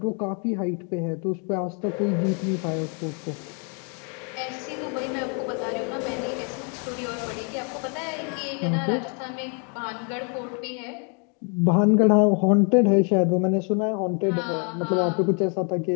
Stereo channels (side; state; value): right; quieter; 37.9 dB